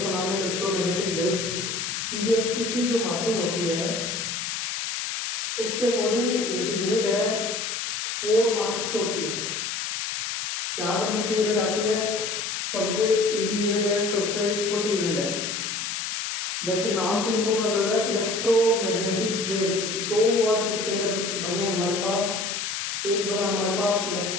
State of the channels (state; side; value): noise; left; hiss, 3 dB below the sound